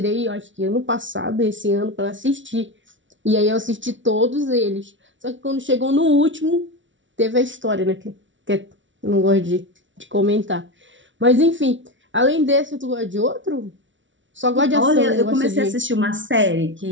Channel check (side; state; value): left; late; 0.55 ms